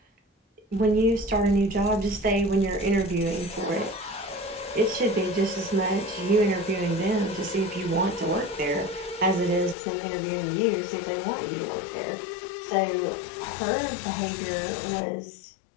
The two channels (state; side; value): drops out; right; at 9.8 s